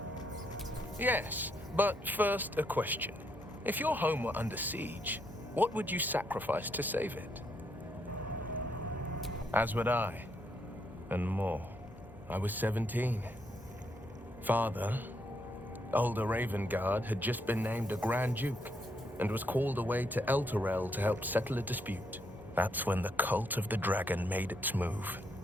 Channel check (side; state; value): both; normal; correlation 0.76